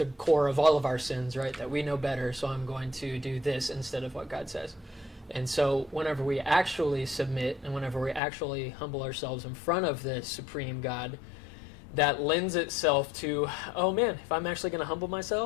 core of all of our sins, right? That we know better, so I'm going to do this instead of what God says. And so whenever we actually submit and whenever we actually humble ourselves in front of the supreme God, that lends itself to, oh man, if I'm actually going to humble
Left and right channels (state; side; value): drops out; right; at 8.2 s